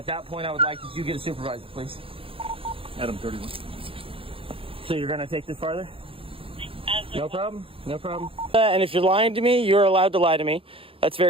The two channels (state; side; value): late; left; 0.27 ms